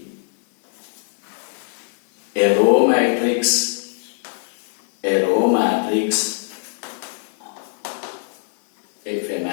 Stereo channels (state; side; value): silent; right; 60 dB below the other